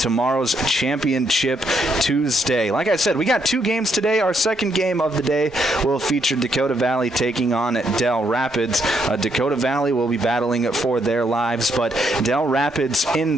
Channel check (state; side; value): normal; both; correlation 0.75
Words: Championship Tuesday. Like I said, we got 2 games today. Our second game of the day will feature Dakota Valley taking on Del Rapids. Dakota Valley will be battling for their lives, but Del Rapids,